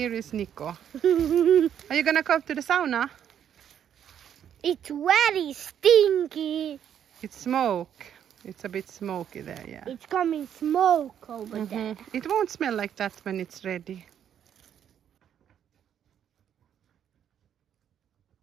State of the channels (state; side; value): quieter; left; 9.4 dB